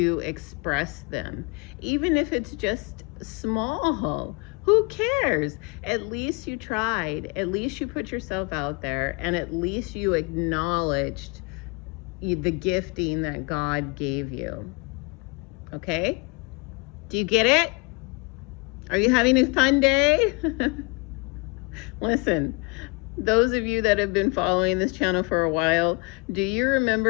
express them. Even if it's just small, who cares? At least you tried. At least you put yourself out there, and at least you acknowledged the gifting that God gave you. Okay? Do you get it? Are you having a fun day? Listen, those of you that have been following this channel for a while, do you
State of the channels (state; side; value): quieter; right; 30.1 dB